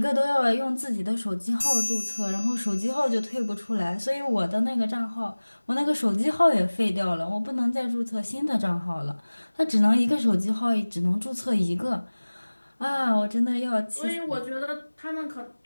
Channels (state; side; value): inverted; both; correlation -1.00